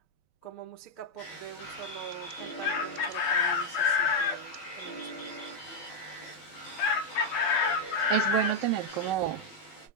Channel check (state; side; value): late; right; 12 ms